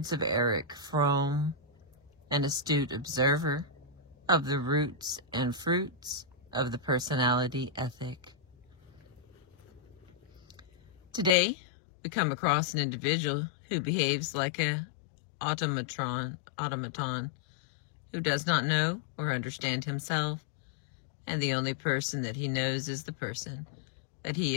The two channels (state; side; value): drops out; right; at 11.4 s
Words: of Erich Fromm, an astute observer of the roots and fruits of the personality ethic. Today, we come across an individual who behaves like an automaton who does not know or understand himself, and the only person that he knows is the person that he